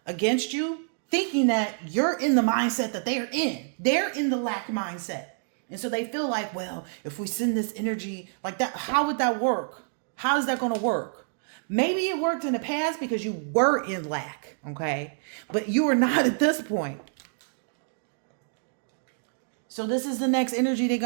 against you, thinking that you're in the mindset that they're in. They're in the lack mindset. And so they feel like, well, if we send this energy like that, how would that work? How is that going to work? Maybe it worked in the past because you were in lack, okay? But you are not at this point. So this is the next energy they're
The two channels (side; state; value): left; silent; digital silence